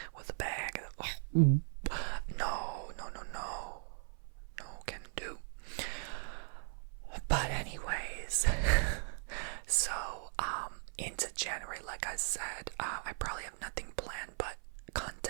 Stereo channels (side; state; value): left; silent; 52 dB below the other